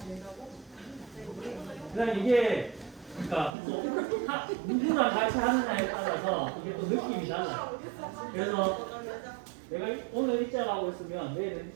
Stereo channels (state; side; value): drops out; left; at 3.5 s